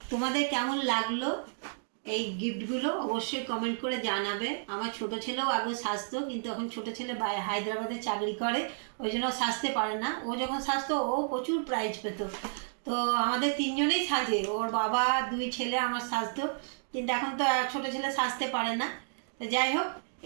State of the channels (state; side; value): silent; left; digital silence